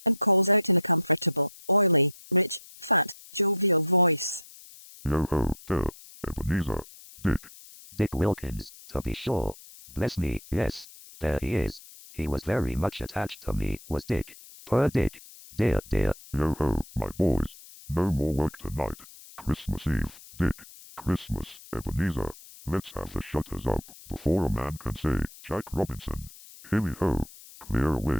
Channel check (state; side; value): noise; left; hiss, 19 dB below the sound